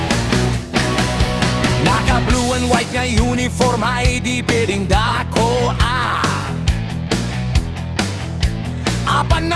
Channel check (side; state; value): both; identical; correlation 1.00